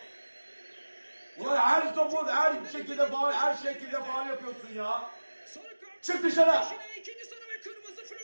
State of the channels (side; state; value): both; inverted; correlation -1.00